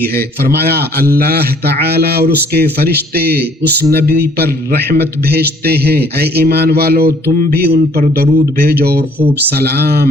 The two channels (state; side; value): normal; both; correlation 0.59